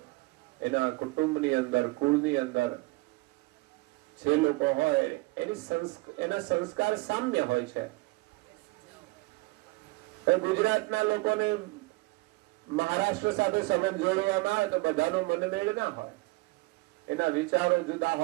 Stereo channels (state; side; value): quieter; left; 23.1 dB